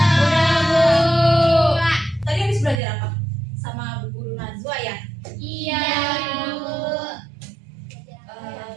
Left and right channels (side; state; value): left; drops out; at 2.8 s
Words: Bu. Tadi habis belajar apa? Sama Bu Guru Najwa ya? Iya, Bu.